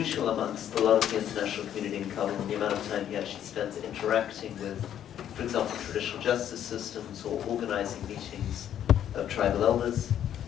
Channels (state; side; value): quieter; right; 10.3 dB